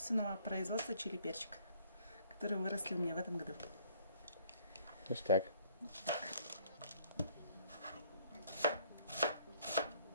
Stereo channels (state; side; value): inverted; both; correlation -0.61